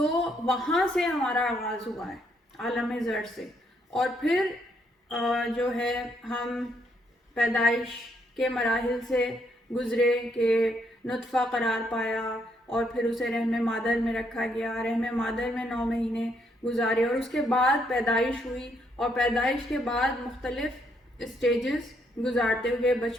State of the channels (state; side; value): normal; both; correlation 0.73